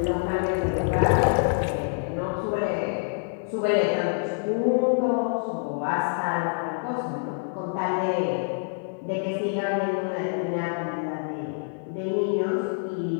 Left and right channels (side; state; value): right; silent; digital silence